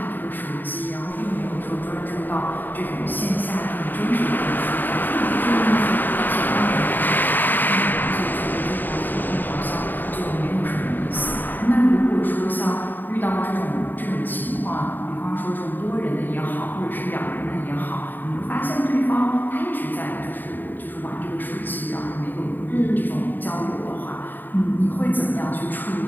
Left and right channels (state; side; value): late; right; 0.090 ms